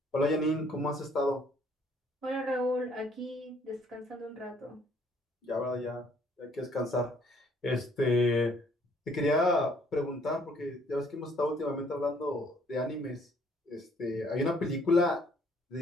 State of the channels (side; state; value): both; normal; correlation 0.63